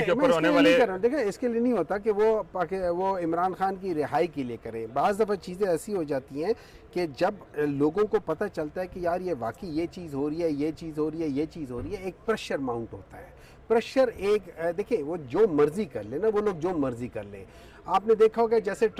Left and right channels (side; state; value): both; identical; correlation 1.00